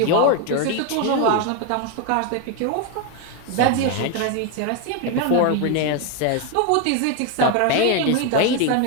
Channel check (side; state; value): both; different; correlation 0.01